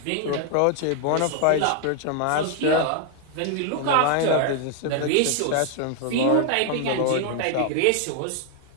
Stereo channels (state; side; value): different; both; correlation 0.00